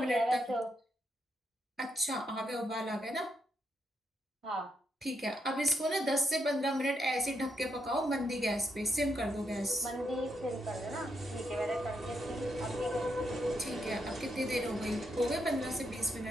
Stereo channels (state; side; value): normal; both; correlation 0.81